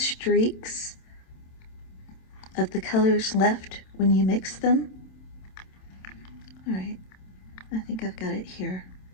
of the colors left when you mix them. All right, I think I've got it here.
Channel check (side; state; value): right; late; 27 ms